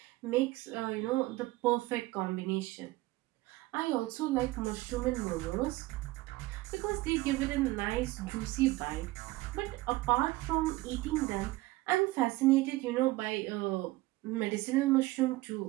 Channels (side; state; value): left; quieter; 19.4 dB